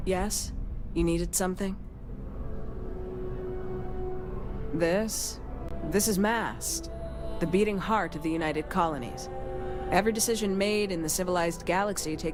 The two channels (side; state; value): both; identical; correlation 1.00